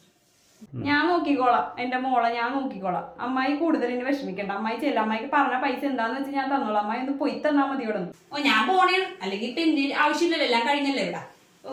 ഞാൻ നോക്കിക്കോളാം. എന്റെ മോളെ ഞാൻ നോക്കിക്കോളാം. അമ്മായി കൂടുതൽ ഇനി വിഷമിക്കണ്ട. അമ്മായി ചെല്ല. അമ്മായിക്ക് പറഞ്ഞ പൈസ എന്താന്ന് വെച്ചാൽ ഞാൻ തന്നോളാം. അമ്മായി ഒന്ന് പോയി തന്നാ മതി ഇവിടെ നിന്ന്. ഞാൻ പോണേ, അല്ലെങ്കിൽ ഇപ്പൊ എന്റെ ആവശ്യമില്ലല്ലോ, എല്ലാം കഴിഞ്ഞല്ലേ ഇവിടെ.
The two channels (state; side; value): identical; both; correlation 1.00